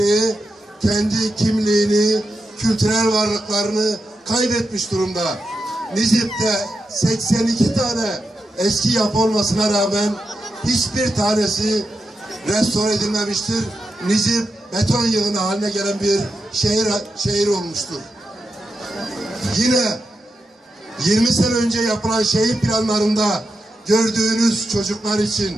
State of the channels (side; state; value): both; normal; correlation 0.88